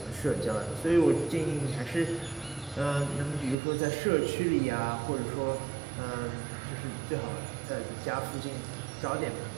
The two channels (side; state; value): left; drops out; at 3.6 s